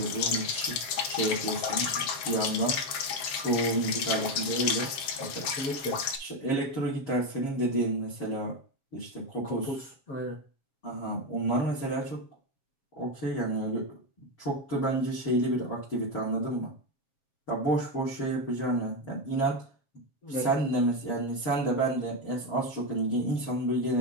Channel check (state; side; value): late; right; 7.3 ms